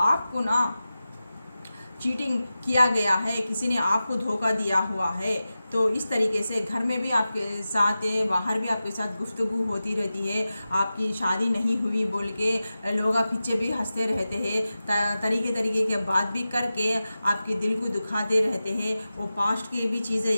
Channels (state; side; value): inverted; both; correlation -0.94